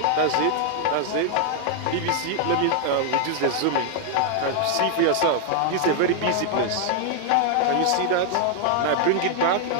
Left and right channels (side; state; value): both; different; correlation 0.00